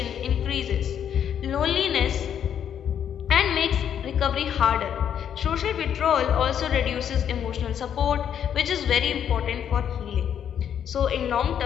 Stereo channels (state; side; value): quieter; right; 9.0 dB